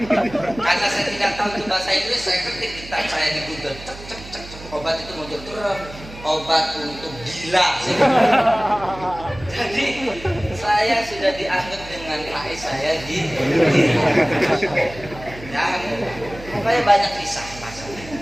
Karena saya tidak tahu itu bahasa Inggris, saya ketik kitab saya di Google, cek. Obat itu muncul terus. Obat untuk gila. Jadi saya sudah dianggap dengan Pak saya di ya, makanya banyak kisah masalah.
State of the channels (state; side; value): noise; right; hum, 16 dB below the sound